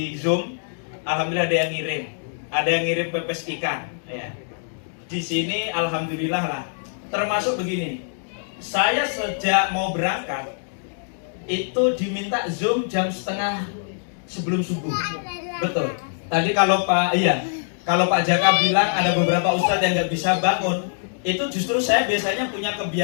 Zoom, alhamdulillah ada yang ngirim pepes ikan. Ya. Di sini alhamdulillah lah. Termasuk begini, saya sejak mau berangkat itu diminta Zoom jam setengah sebelum subuh. Betul. Tadi kalau Pak Jaka bilang ada beberapa ustadz yang nggak bisa bangun, itu justru saya biasanya punya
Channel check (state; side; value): silent; right; digital silence